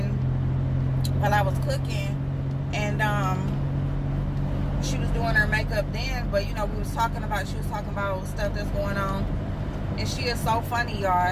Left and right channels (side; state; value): both; identical; correlation 1.00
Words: while I was cooking, and, she was doing her makeup then, but she was talking about stuff that's going on, and she is so funny, y'all.